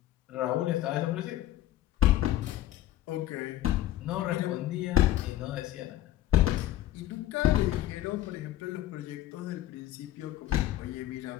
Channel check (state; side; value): quieter; right; 13.9 dB